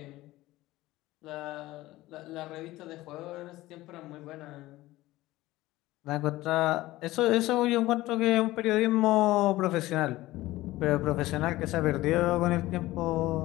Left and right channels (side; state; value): right; quieter; 17.5 dB